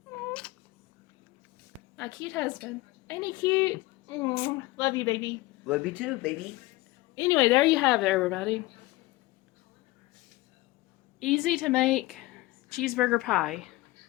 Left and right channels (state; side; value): quieter; right; 19.5 dB